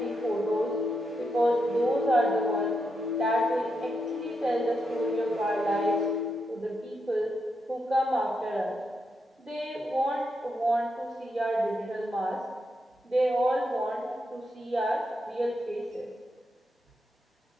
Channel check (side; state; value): both; normal; correlation 0.83